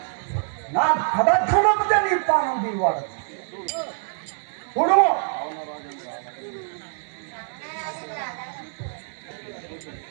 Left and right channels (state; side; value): silent; left; 62 dB below the other